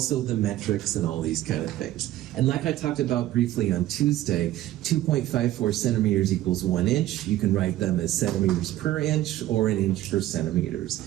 the metrics and all these kind of things. And like I talked about briefly on Tuesday, 2.54 centimeters equals 1 inch. You can write them as centimeters per inch or an inch per centimeters.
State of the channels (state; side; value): quieter; left; 14.4 dB